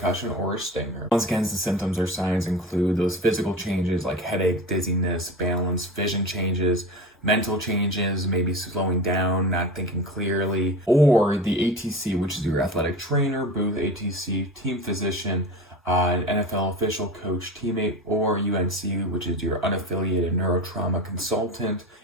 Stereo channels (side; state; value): both; normal; correlation 0.31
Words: or a stinger. Once again, the symptoms or signs include those physical changes like headache, dizziness, balance, vision changes, mental changes, maybe slowing down, not thinking clearly, or the ATC, which is your athletic trainer, booth ATC, team physician, an NFL official, coach, teammate, or UNC, which is your unaffiliated neurotrauma consultant,